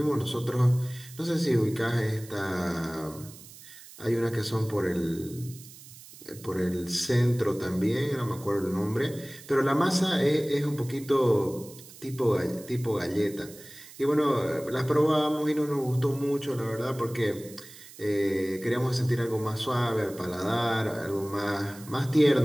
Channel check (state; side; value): noise; right; hiss, 18 dB below the sound